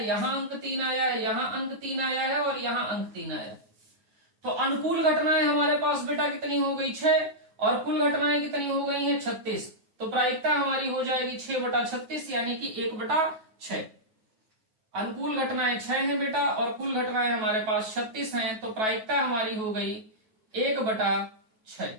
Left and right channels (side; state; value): left; late; 9.3 ms